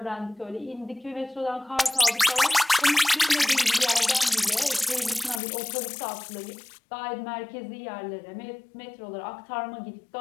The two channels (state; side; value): drops out; right; at 5.4 s